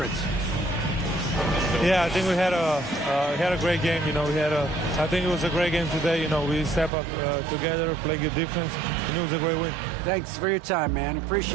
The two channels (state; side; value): drops out; left; at 6.9 s